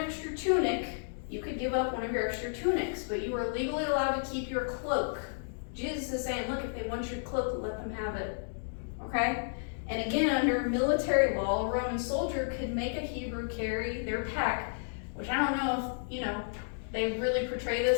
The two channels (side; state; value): right; silent; digital silence